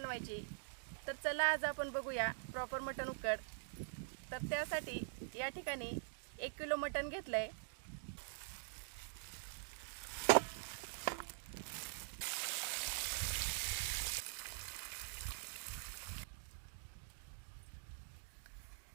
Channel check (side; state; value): left; silent; digital silence